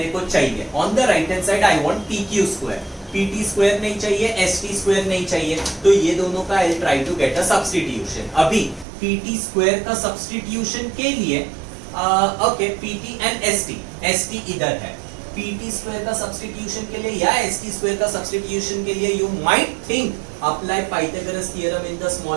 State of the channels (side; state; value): left; drops out; at 8.8 s